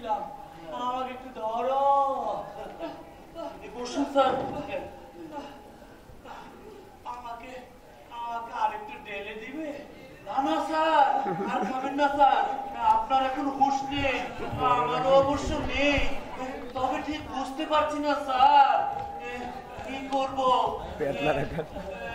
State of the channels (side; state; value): both; identical; correlation 1.00